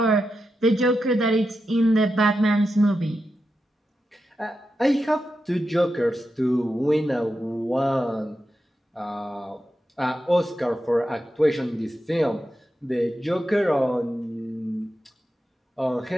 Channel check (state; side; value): normal; both; correlation 0.88